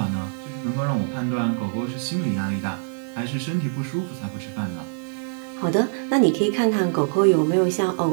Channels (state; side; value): silent; left; 60 dB below the other